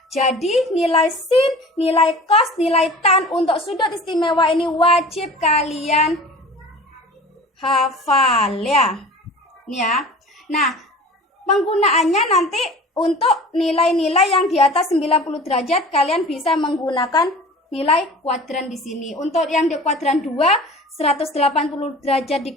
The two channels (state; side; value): normal; both; correlation 0.40